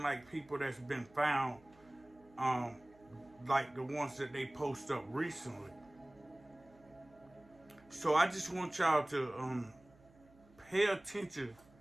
like people that's been found like the ones that they post up recently. So I just want y'all to pay attention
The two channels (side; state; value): right; noise; hum, 27 dB below the sound